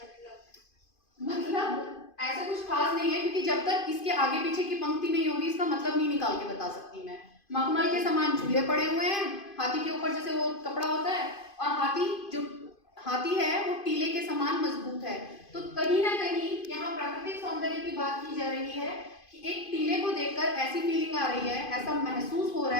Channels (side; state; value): right; late; 2.5 ms